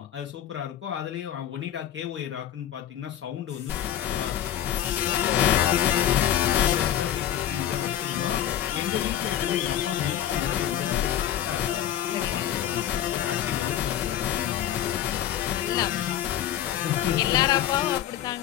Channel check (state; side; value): quieter; right; 11.4 dB